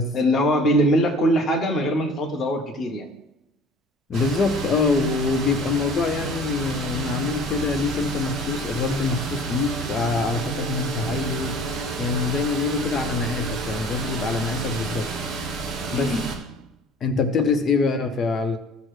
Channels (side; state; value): both; normal; correlation 0.47